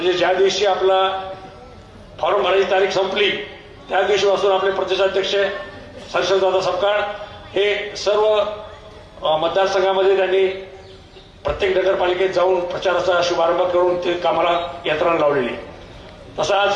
ज्या दिवशी आपला फॉर्म भरायची तारीख संपली त्या दिवशीपासून आपले प्रदेशाध्यक्ष हर्षवर्धनदादा सपकाळ हे सर्व मतदारसंघामध्ये त्यांनी प्रत्येक नगरपालिकेत जाऊन प्रचाराचा शुभारंभ करून ते कामाला यंत्रणा लावलेली. तसं आज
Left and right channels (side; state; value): both; identical; correlation 1.00